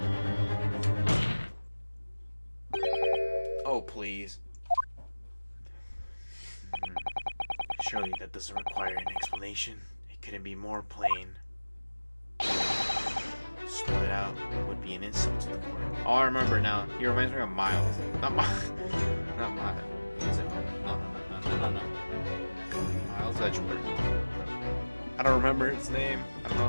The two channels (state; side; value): inverted; both; correlation -1.00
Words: Oh, please. Surely that doesn't require an explanation. It couldn't be more plain. Spell it out would be an insult to the court. Oh, I remember now. He reminds me of Miles. Not Miles. Not Miles. Is it? No. Miles Edgeworth. I don't remember his name. I don't know